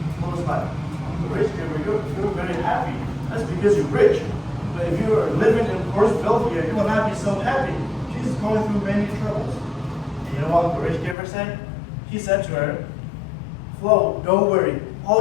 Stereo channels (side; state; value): right; drops out; at 11.2 s